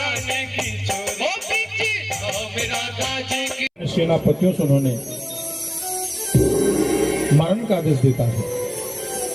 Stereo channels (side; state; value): both; identical; correlation 1.00